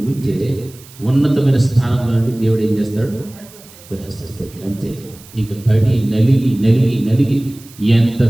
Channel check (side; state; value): right; noise; hiss, 22 dB below the sound